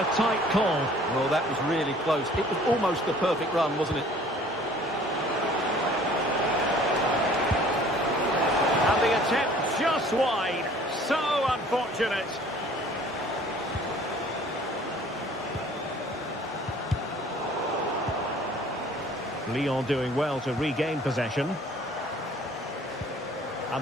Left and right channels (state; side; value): normal; both; correlation 0.52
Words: tight call. Well, that was really close. It was almost the perfect run, wasn't it? And the attempt just wide. So unfortunate. Lyon doing well to regain possession.